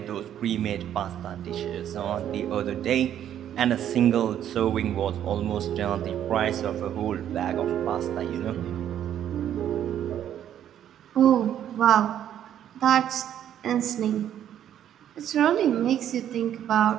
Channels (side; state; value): left; quieter; 10.5 dB